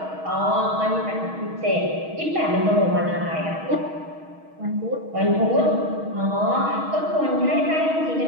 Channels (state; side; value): late; left; 6.3 ms